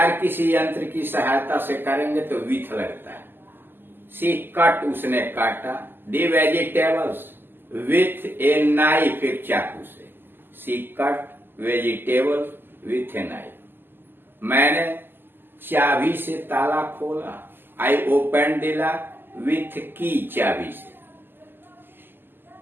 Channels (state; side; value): late; left; 0.096 ms